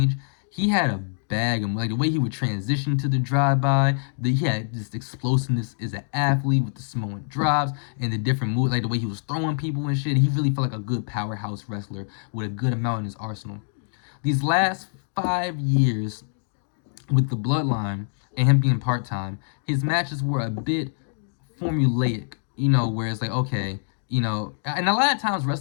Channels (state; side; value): silent; right; digital silence